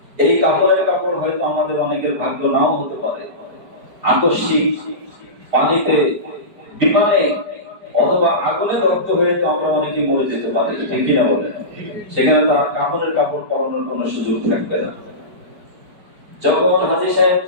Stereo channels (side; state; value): left; late; 4.8 ms